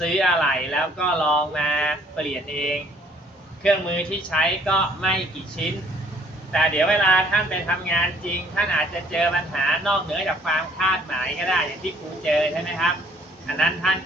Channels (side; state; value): both; normal; correlation 0.61